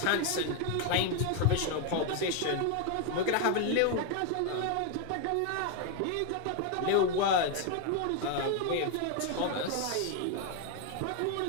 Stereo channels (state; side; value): different; both; correlation 0.01